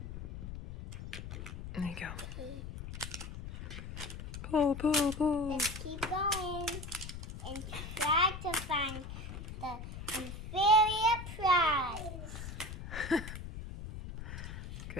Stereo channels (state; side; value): noise; left; rumble, 9 dB below the sound